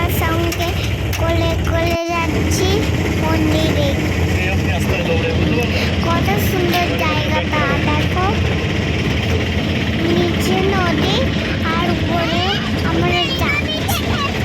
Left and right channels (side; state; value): both; identical; correlation 1.00